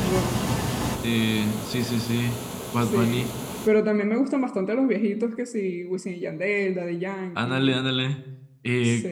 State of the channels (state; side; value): identical; both; correlation 1.00